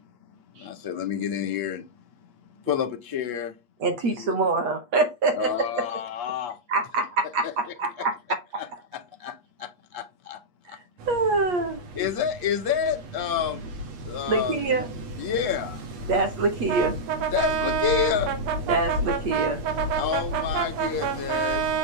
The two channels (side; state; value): left; late; 8.4 ms